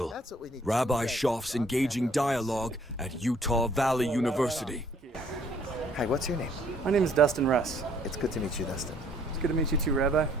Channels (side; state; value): both; normal; correlation 0.62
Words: That's what we need. Rabbi Shoff's Engaging Dialogue at Utah Valley University. Hi, what's your name? My name is Dustin Russ. It's good to meet you, Dustin. It's good to meet you too, Rabbi.